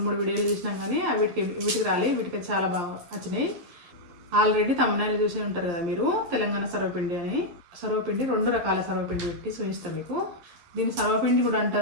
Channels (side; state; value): left; late; 11 ms